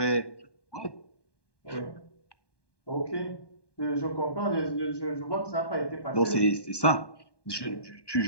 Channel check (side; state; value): right; late; 1.2 ms